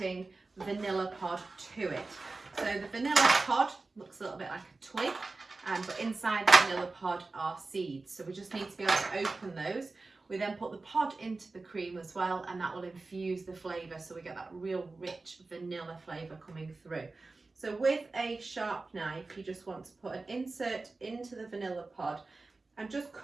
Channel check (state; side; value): quieter; left; 3.6 dB